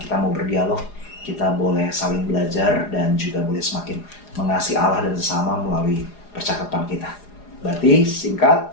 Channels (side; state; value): right; late; 4.8 ms